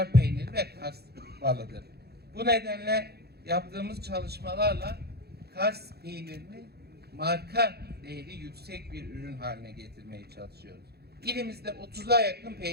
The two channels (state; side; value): late; left; 0.47 ms